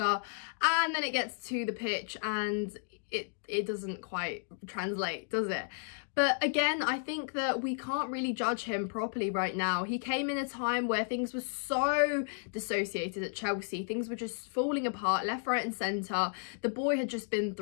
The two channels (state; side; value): silent; right; digital silence